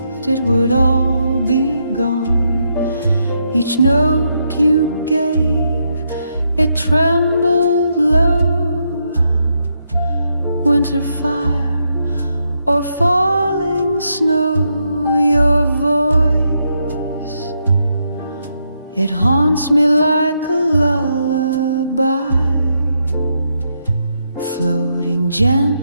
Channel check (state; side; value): inverted; both; correlation -0.80